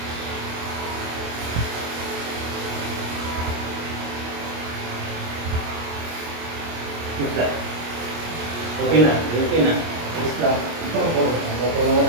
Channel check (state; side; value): late; left; 25 ms